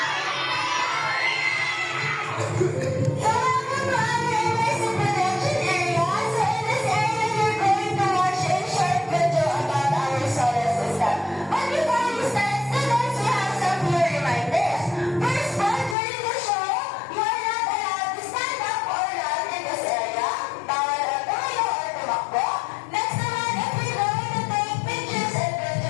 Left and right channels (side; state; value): right; drops out; at 16.0 s